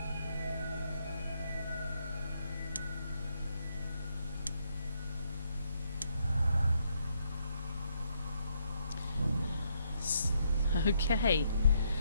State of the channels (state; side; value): inverted; both; correlation -0.75